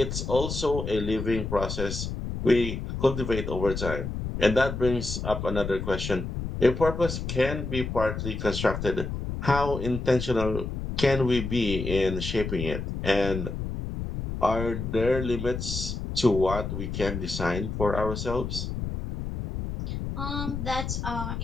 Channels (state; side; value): noise; left; rumble, 5 dB below the sound